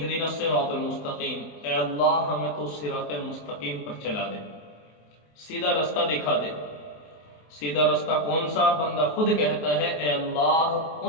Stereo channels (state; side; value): late; right; 27 ms